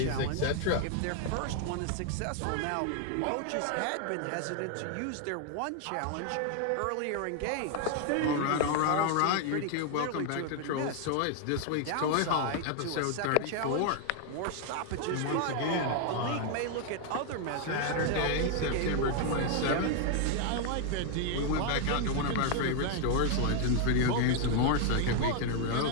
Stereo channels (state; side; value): different; both; correlation 0.00